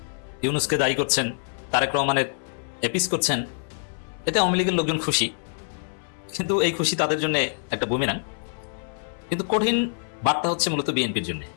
ইউনূসকে দায়ী করছেন, তারেক রহমানের এপিস করছেন। এতে আওয়ামী লীগের লোকজন খুশি, কিন্তু এই খুশি তাদের জন্য একটা বুমেরাং। কিন্তু কঠিন বার্তা হচ্ছে মূলত বিএনপির জন্য।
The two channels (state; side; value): silent; right; 61 dB below the other